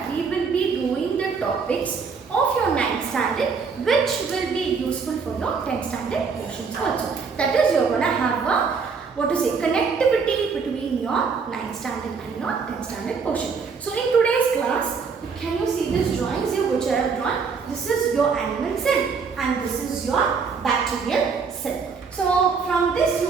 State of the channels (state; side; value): quieter; left; 5.4 dB